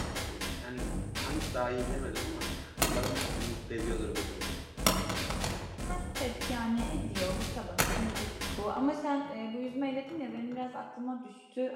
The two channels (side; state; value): both; identical; correlation 1.00